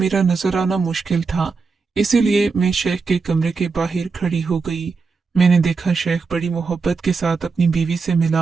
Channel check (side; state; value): left; quieter; 4.7 dB